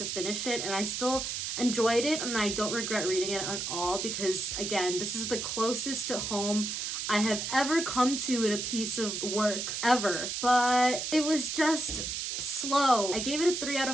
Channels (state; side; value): noise; right; hiss, 3 dB below the sound